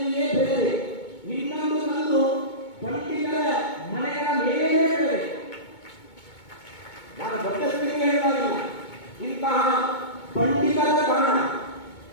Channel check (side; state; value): right; late; 2.2 ms